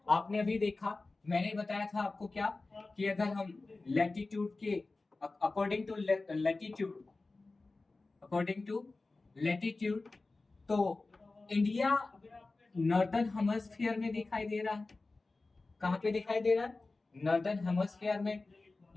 आपने अभी देखा, मैंने बताया था आपको क्या, कि अगर हम लैटिट्यूड के अकॉर्डिंग टू लैटिट्यूड तो इंडिया नॉर्दर्न हेमिस्फीयर में दिखाई दे रहा है। कहां पे दिखाई दे रहा है? नॉर्दर्न हेमिस्फीयर में,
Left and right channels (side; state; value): right; quieter; 3.4 dB